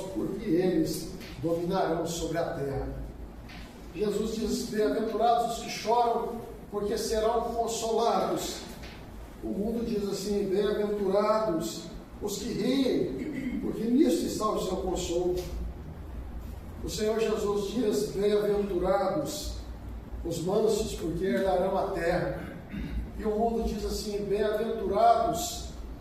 porque eles dominarão sobre a terra. Jesus diz: bem-aventurados os que choram, porque serão consolados. O mundo diz assim: bem-aventurados os que riem, porque nisso está o seu consolo. O Senhor Jesus diz: bem-aventurados os mansos, porque herdarão a terra. E o mundo diz assim: bem-aventurados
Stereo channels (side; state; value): both; identical; correlation 1.00